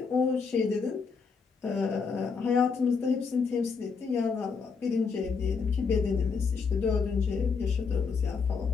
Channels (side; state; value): right; quieter; 5.3 dB